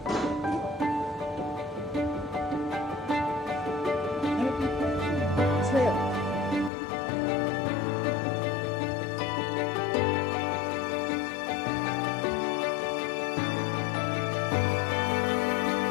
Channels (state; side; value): drops out; right; at 6.7 s